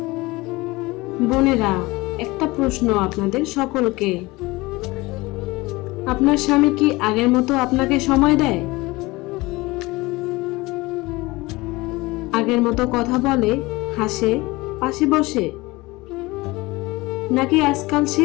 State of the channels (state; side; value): quieter; right; 21.8 dB